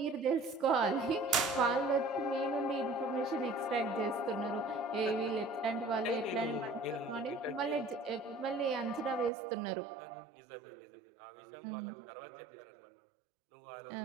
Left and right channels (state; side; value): drops out; left; at 9.3 s